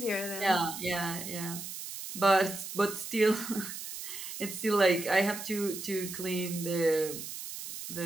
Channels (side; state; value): right; noise; hiss, 9 dB below the sound